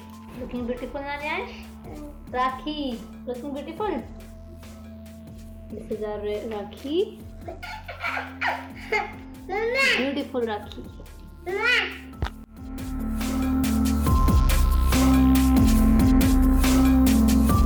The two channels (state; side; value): identical; both; correlation 1.00